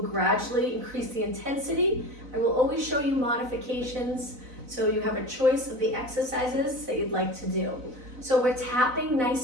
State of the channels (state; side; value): late; left; 4.0 ms